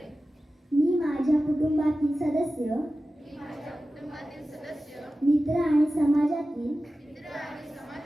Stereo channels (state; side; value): normal; both; correlation 0.95